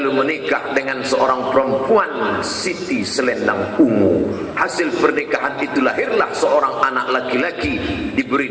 menikah dengan seorang perempuan Siti Selendang Ungu. Hasil pernikahan itu lahirlah seorang anak laki-laki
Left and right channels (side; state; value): both; identical; correlation 1.00